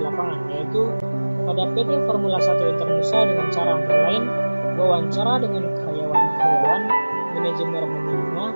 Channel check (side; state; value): both; inverted; correlation -1.00